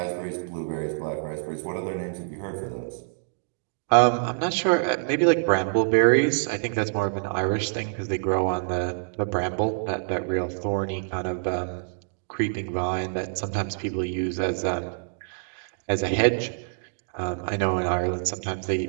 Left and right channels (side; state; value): left; silent; digital silence